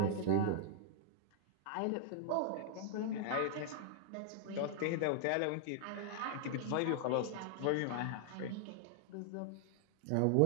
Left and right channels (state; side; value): different; both; correlation -0.01